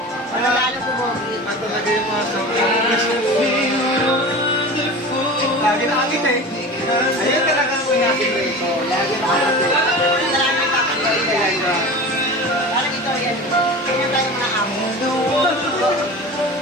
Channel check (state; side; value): normal; both; correlation 0.33